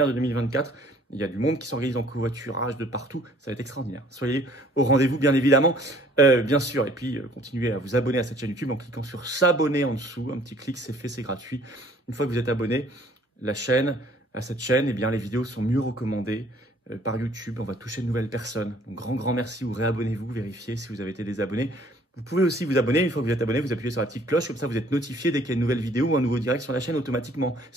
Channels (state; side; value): normal; both; correlation 0.57